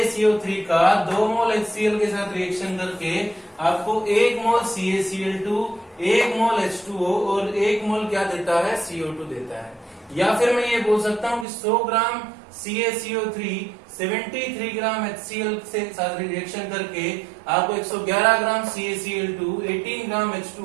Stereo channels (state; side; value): drops out; left; at 11.5 s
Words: का 2 मोल HCl के साथ रिएक्शन करके आपको 1 मोल CaCl2, 1 मोल H2O और 1 मोल क्या देता है? CO2 देता है। या फिर मैं ये बोल सकता हूं कि 100 ग्राम CaCO3 73 ग्राम HCl से साथ रिएक्शन करके आपको 111 ग्राम CaCl2, 18 ग्राम